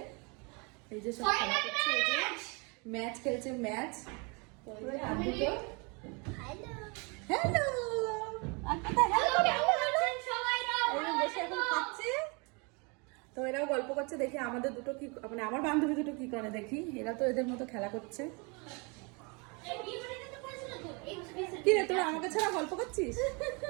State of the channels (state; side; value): quieter; left; 31.1 dB